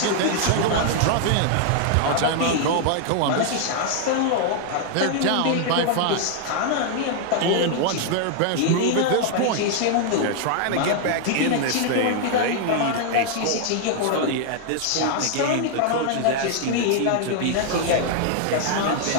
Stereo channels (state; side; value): different; both; correlation 0.00